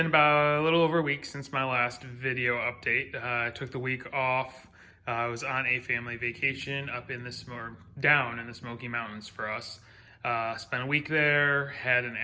about a little over a week since my last video update. I took the week off. I was on a family vacation up in down in the Smoky Mountains for us. Spent a week there, had an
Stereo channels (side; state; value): both; identical; correlation 1.00